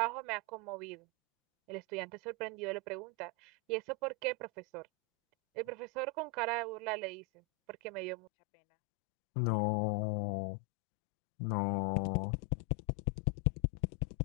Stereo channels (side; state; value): right; drops out; at 8.3 s